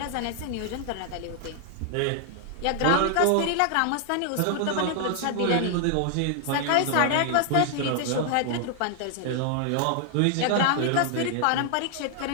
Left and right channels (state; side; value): different; both; correlation 0.00